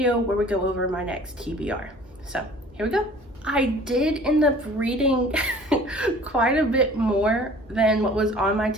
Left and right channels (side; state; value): both; normal; correlation 0.48